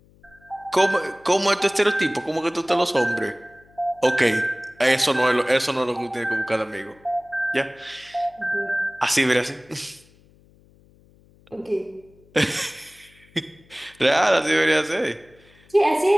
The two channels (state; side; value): noise; left; hum, 29 dB below the sound